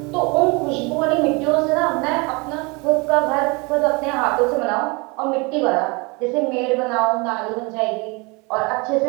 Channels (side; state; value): left; quieter; 28.3 dB